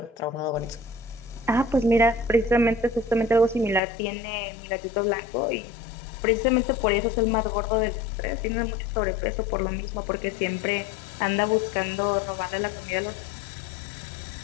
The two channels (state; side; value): drops out; right; at 3.8 s